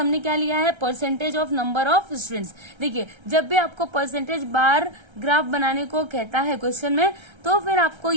क्या लिया है, percentage of number of students. देखिए जब भी आपको परसेंटेज बार ग्राफ बनाने को कहता है क्वेश्चन में, तो फिर आपको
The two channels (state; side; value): late; left; 1.3 ms